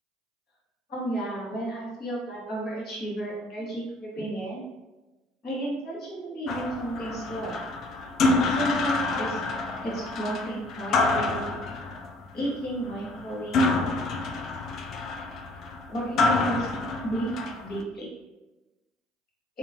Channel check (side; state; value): both; normal; correlation 0.58